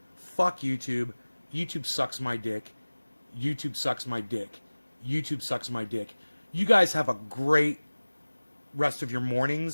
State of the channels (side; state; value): both; inverted; correlation -1.00